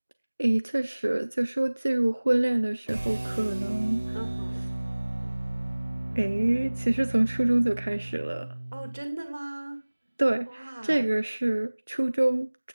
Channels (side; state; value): both; inverted; correlation -1.00